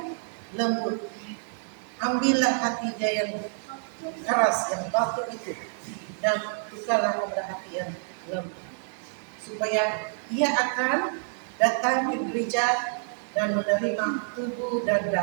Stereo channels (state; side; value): silent; left; 60 dB below the other